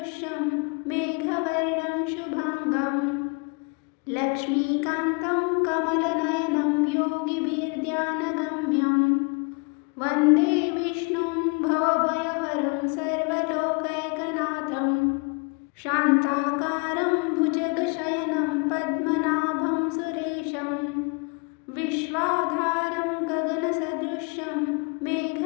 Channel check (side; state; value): right; quieter; 32.4 dB